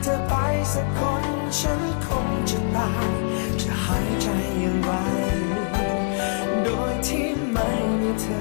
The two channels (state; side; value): silent; right; 63 dB below the other